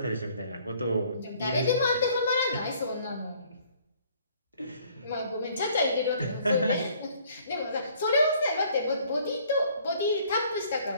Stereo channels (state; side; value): inverted; both; correlation -0.60